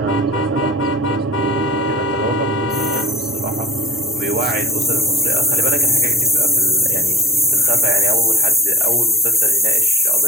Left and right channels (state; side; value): normal; both; correlation 0.45